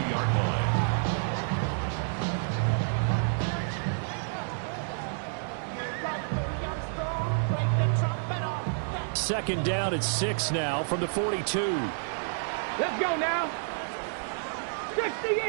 line. Second down at 6 now from the 42. Let's go now. 60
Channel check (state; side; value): silent; left; digital silence